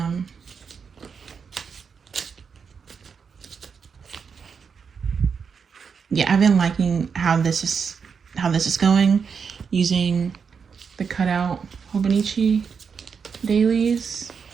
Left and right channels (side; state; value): left; quieter; 6.1 dB